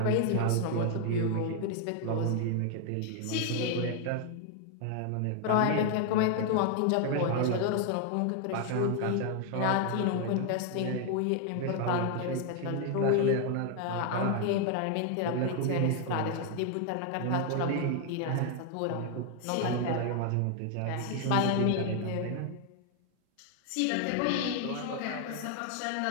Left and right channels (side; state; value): both; different; correlation 0.00